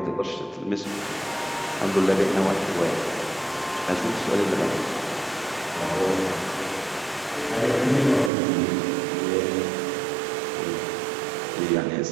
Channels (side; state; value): left; drops out; at 8.3 s